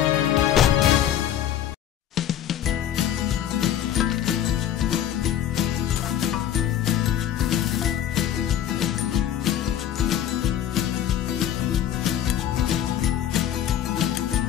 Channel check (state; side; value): quieter; right; 10.8 dB